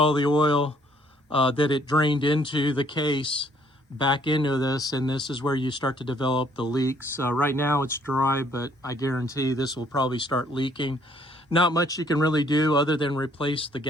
the oil that it drained into the case back into this, and this is where you start to develop the leaks. Right now it's dry, but I guarantee this will probably start leaking. Not much you can really do other than replace the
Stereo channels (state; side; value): normal; both; correlation 0.64